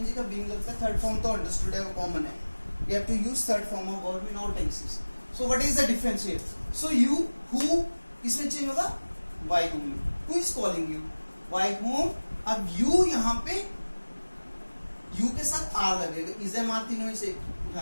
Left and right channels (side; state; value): both; inverted; correlation -1.00